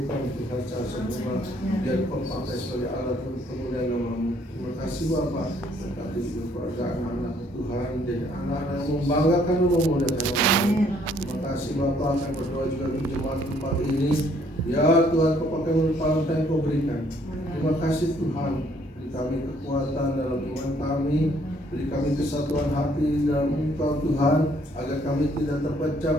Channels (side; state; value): both; normal; correlation 0.65